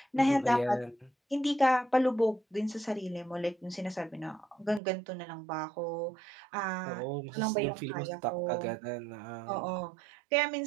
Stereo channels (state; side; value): drops out; left; at 4.8 s